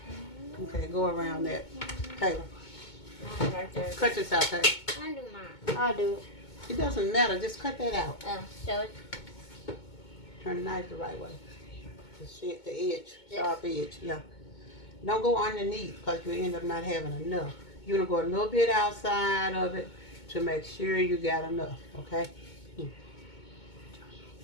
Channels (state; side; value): late; right; 2.2 ms